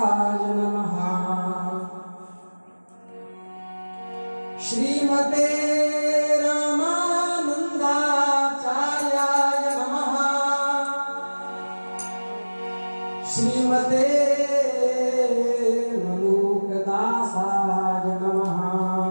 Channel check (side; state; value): both; inverted; correlation -1.00